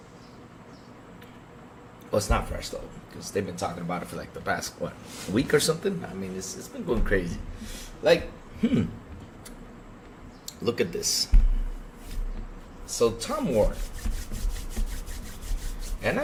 Well, it's not fresh though, because they've been talking about it for like the past week or something. I mean, it's been going crazy. Like, look at this. So Tom Ward, and I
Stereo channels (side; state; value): both; identical; correlation 1.00